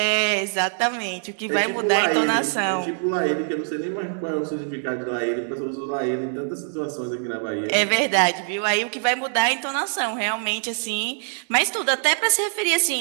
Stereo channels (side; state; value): left; silent; digital silence